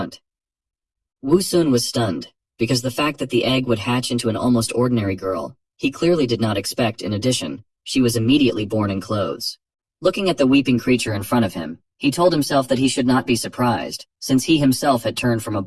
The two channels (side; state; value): both; identical; correlation 1.00